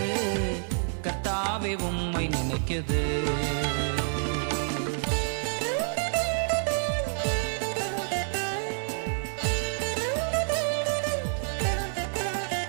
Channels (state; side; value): silent; left; 59 dB below the other